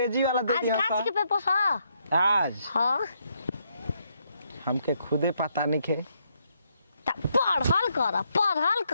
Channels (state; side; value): inverted; both; correlation -0.75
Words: वाला दे दिया आज के पेपर हां आज हां हमके खुदे पता नहीं के